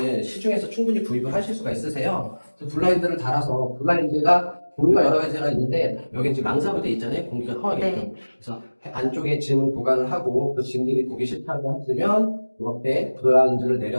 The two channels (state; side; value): inverted; both; correlation -1.00